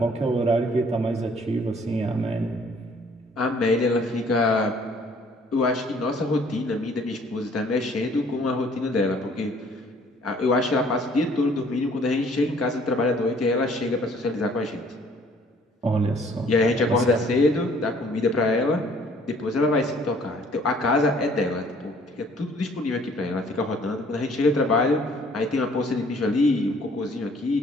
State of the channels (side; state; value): both; normal; correlation 0.58